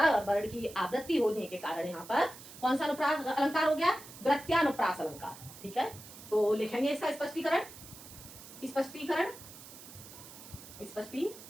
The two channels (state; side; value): noise; right; hiss, 16 dB below the sound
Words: वर्ण की आवृत्ति होने के कारण यहाँ पर कौन सा अनुप्रास अलंकार हो गया, वृत्त्यानुप्रास अलंकार। ठीक है, तो लिखेंगे इसका स्पष्टीकरण,